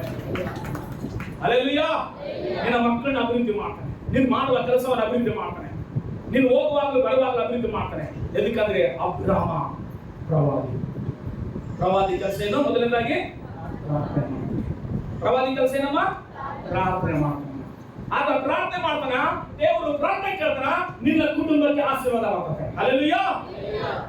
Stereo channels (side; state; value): both; identical; correlation 1.00